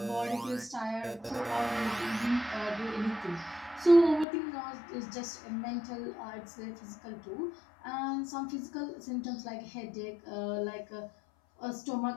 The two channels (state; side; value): drops out; right; at 4.2 s